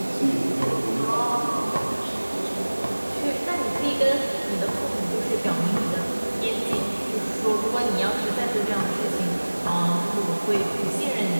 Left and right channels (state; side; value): inverted; both; correlation -1.00